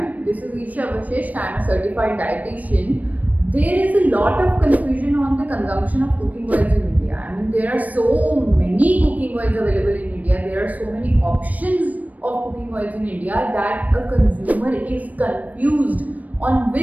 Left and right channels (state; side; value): late; left; 0.074 ms